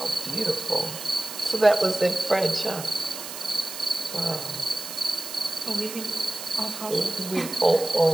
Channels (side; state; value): right; noise; hiss, 9 dB below the sound